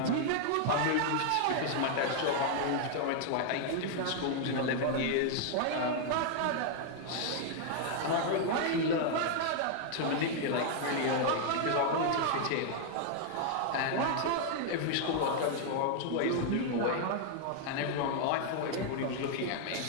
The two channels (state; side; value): different; both; correlation 0.00